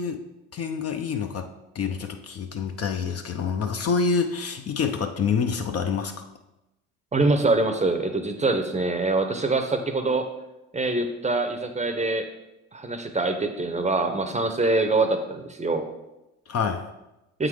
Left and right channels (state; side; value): normal; both; correlation 0.38